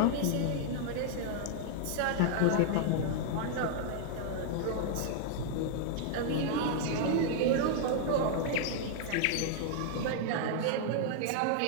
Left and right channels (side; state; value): both; different; correlation -0.01